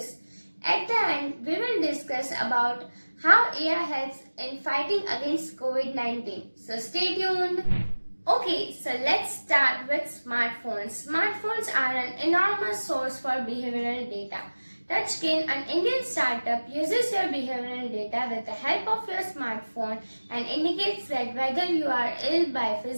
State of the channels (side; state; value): both; inverted; correlation -1.00